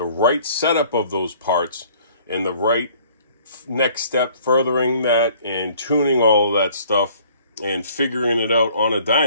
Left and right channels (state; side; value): inverted; both; correlation -0.56